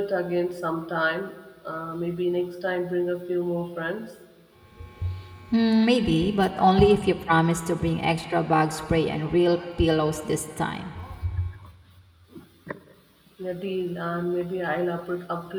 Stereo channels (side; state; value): both; identical; correlation 1.00